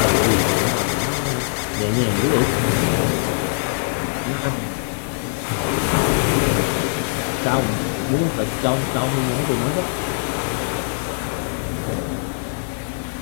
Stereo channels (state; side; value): silent; right; digital silence